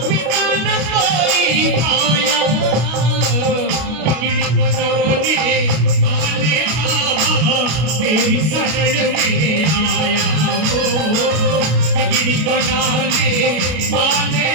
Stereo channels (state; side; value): late; left; 32 ms